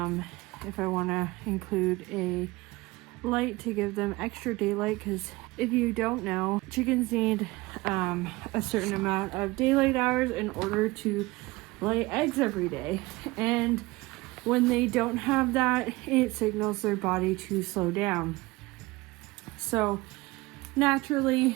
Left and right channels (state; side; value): quieter; left; 21.5 dB